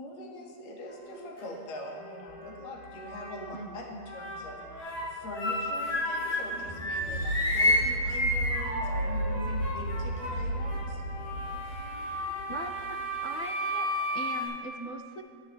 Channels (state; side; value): late; right; 12 ms